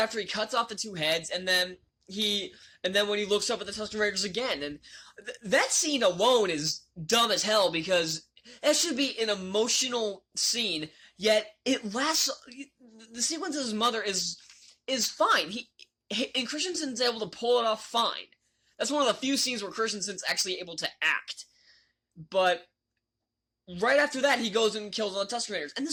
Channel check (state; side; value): identical; both; correlation 1.00